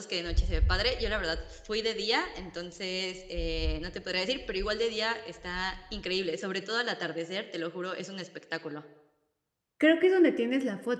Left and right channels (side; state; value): both; identical; correlation 1.00